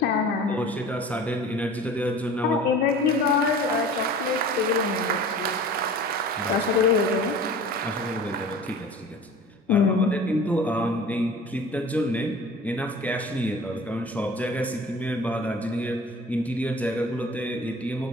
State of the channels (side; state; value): both; normal; correlation 0.42